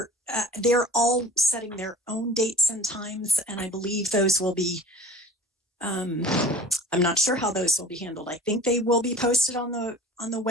they're all setting their own dates and times, and I believe those will be, I'm not sure how those will be handled. I think they will be posted on the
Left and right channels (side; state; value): both; normal; correlation 0.42